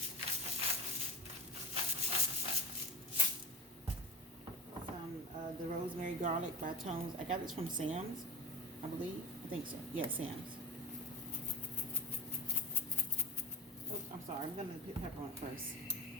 some the rosemary garlic by Tones. I got this from Sam's, I believe. I think so. Yeah, Sam's. Oh, I'm sorry. I'm gonna put pepper on it first.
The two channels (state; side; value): normal; both; correlation 0.31